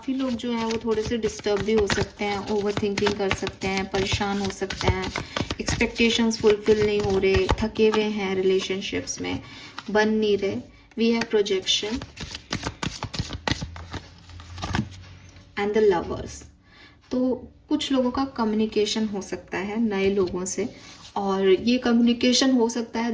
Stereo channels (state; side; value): identical; both; correlation 1.00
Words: लोग जो हैं वो थोड़े से डिस्टर्ब भी हो सकते हैं, ओवर थिंकिंग कर सकते हैं, परेशान हो सकते हैं, एक्सपेक्टेशंस फुलफिल नहीं हो रहे, थके हुए हैं, रिलेशनशिप्स में बन नहीं रहे। We have projection and the lovers. तो कुछ लोगों का कम्युनिकेशन हो सकता है नए लोगों से, और ये कम्युनिकेशन हो सकता है